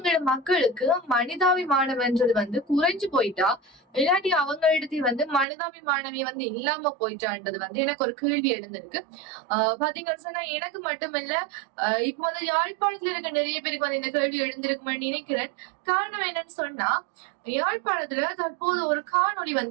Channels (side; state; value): left; drops out; at 5.5 s